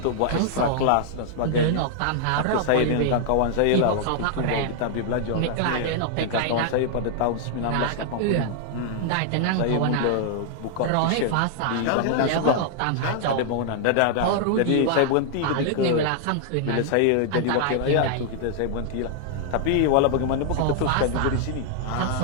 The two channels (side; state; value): both; different; correlation -0.01